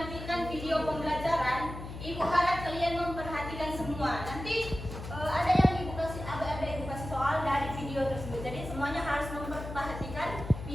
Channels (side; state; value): left; noise; hum, 9 dB below the sound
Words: video pembelajaran. Ibu harap kalian memperhatikan semua. Nanti ada yang ibu kasih soal dari video tersebut. Jadi semuanya harus memperhatikan